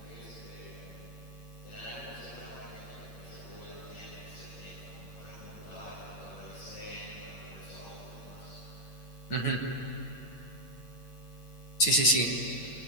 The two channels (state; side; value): late; right; 8.7 ms